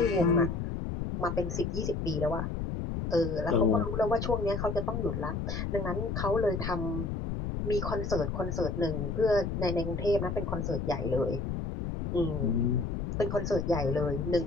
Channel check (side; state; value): left; noise; rumble, 3 dB below the sound